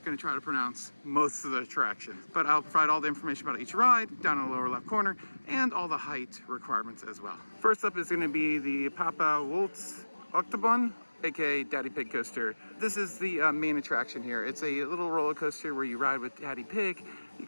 going to try to pronounce most of the attractions. But I'll provide all the information about each ride down in the lower left corner and all the height requirements as well. First up is going to be the Papa Waltz Octobahn, aka Daddy Pig coaster. This is the main attraction here. It's a little roller coaster where you ride with Daddy Pig. You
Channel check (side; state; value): both; inverted; correlation -1.00